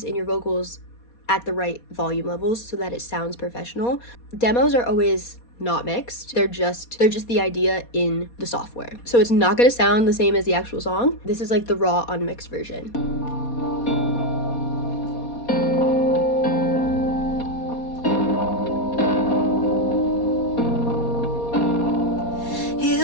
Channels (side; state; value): right; late; 4.2 ms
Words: and your vocals at the right volume levels so that it sounds professional. Demos are always not mixed. They're just the idea in the software. So it's not going to sound the same as the actual song. This is like the raw unmixed version.